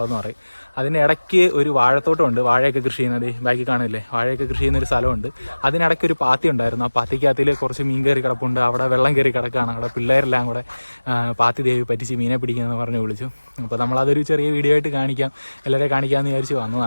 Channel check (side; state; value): both; inverted; correlation -1.00